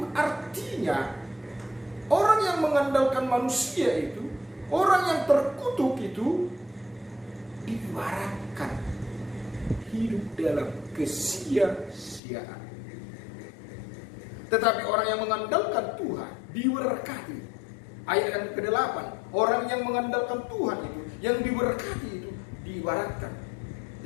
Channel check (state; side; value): drops out; right; at 12.2 s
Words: Artinya orang yang mengandalkan manusia itu, orang yang terkutuk itu diibaratkan hidup dalam kesia-siaan. Tetapi orang yang mengandalkan Tuhan diberkati. Ayat yang ke-8, orang yang mengandalkan Tuhan itu, yang diberkati itu diibaratkan